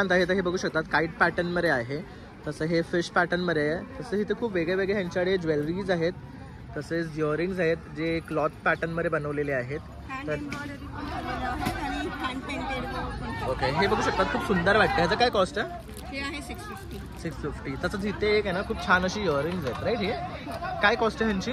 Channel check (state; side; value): identical; both; correlation 1.00